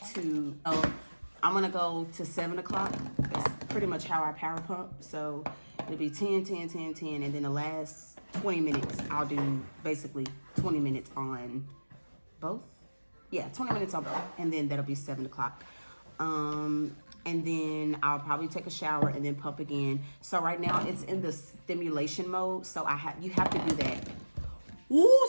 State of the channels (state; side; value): inverted; both; correlation -1.00